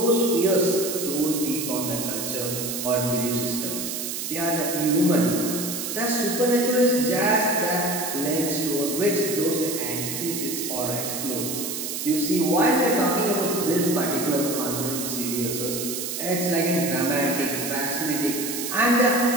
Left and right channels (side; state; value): right; noise; hiss, 4 dB below the sound